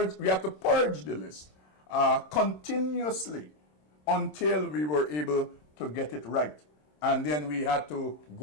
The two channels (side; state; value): right; late; 27 ms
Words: we had to purge the list continuously until we were able to get it right. And then we had to